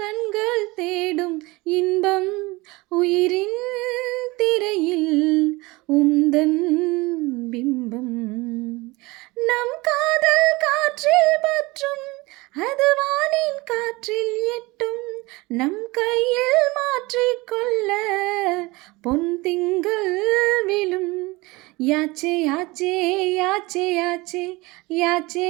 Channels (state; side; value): quieter; left; 22.9 dB